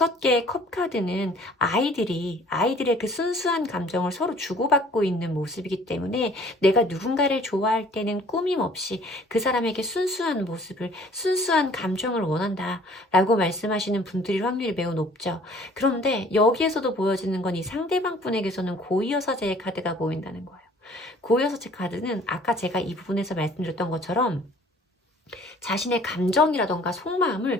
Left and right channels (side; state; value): both; normal; correlation 0.54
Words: 컵 카드는 아이들의 그 순수한 감정을 서로 주고받고 있는 모습이기 때문에 내가 누군가를 좋아할 때는 꾸밈 없이 그 사람에게 순수한 모습을, 순수한 감정을 원한다 라고 말씀하시는 분들일 확률이 매우 높죠. 그런데 여기에서도 보여지는 건 이 상대방 분에게서는 고위여사제의 카드가 보인다는 거예요. 고여섯째 카드는 아까 제가 이 부분에서 말씀드렸던 것처럼 자신의 감정이라던가